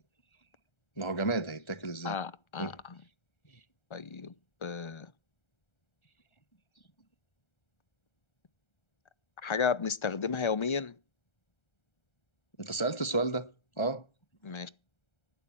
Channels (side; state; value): right; late; 1.3 ms